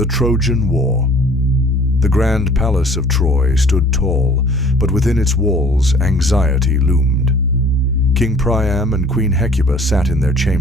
Trojan War. The grand palace of Troy stood tall, but within its walls anxiety loomed. King Priam and Queen Hecuba sat in their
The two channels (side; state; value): both; normal; correlation 0.52